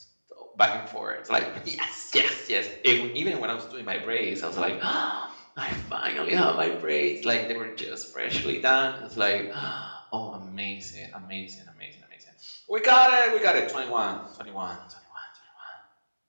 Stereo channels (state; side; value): inverted; both; correlation -1.00